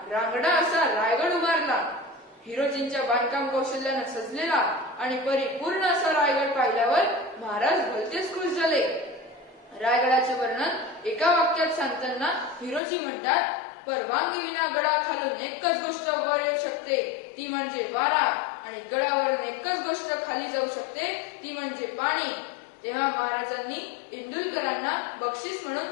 रांगडा असा रायगड उभारला. हिरोजींच्या बांधकाम कौशल्यानं सजलेला आणि परिपूर्ण असा रायगड पाहिल्यावर महाराज भलतेच खुश झाले. रायगडाचे वर्णन एका वाक्यात सांगताना हिरोजी म्हणतात, परवानगी विना गडाखालून एकच गोष्ट वर येऊ शकते, ती म्हणजे वारा, आणि गडावरून एकच गोष्ट खाली जाऊ शकते, ती म्हणजे पाणी. तेव्हा महाराजांनी इंदुलकरांना बक्षीस म्हणून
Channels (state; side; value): drops out; right; at 12.8 s